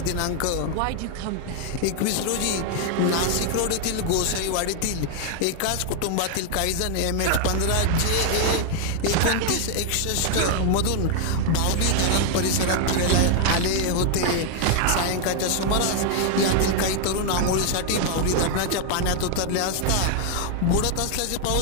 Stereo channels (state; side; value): different; both; correlation 0.00